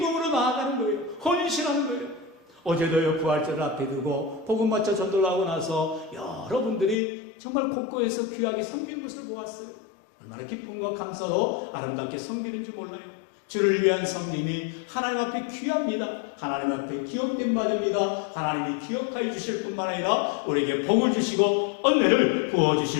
나아가는 거예요. 헌신하는 거예요. 어제도요 부활절을 앞에 두고 복음 맞춰 전도를 하고 나서 여러분들이 정말 곳곳에서 귀하게 섬기는 것을 보았어요. 얼마나 기쁨과 감사로 아름답게 섬기는지 몰라요. 주를 위한 섬김이 하나님 앞에 귀합니다. 하나님 앞에 기억된 바 됩니다. 하나님이 기억하여 주실 뿐만 아니라 우리에게 복을 주시고 은혜를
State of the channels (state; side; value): drops out; right; at 7.0 s